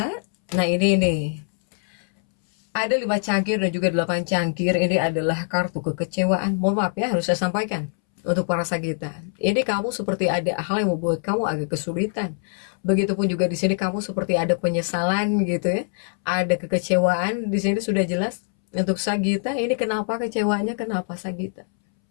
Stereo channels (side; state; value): right; silent; 63 dB below the other